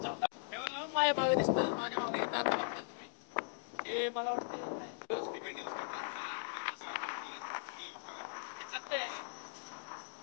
माझ्या मागे दिसतं, माझ्या मागे येतात तुम्ही. हे मला वाटतं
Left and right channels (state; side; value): silent; right; digital silence